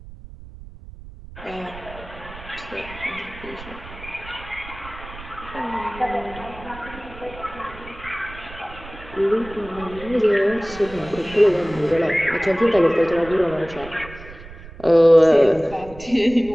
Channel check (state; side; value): noise; right; rumble, 16 dB below the sound